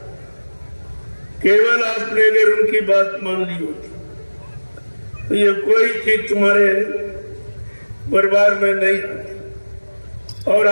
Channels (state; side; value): inverted; both; correlation -1.00